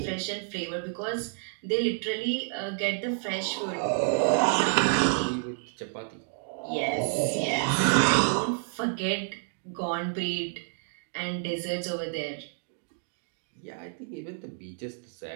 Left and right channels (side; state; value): left; silent; digital silence